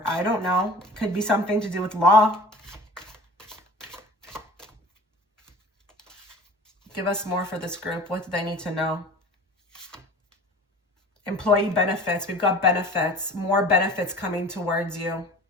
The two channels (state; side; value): normal; both; correlation 0.42